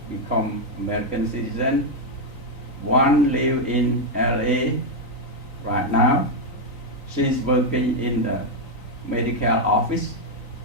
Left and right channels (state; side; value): late; right; 3.9 ms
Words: become American citizen. One live in LA right now. She's working in the medical office.